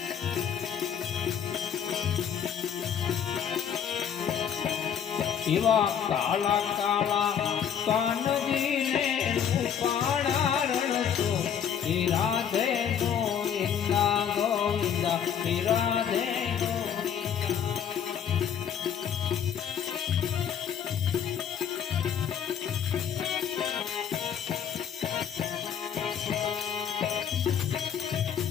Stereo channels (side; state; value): right; quieter; 8.3 dB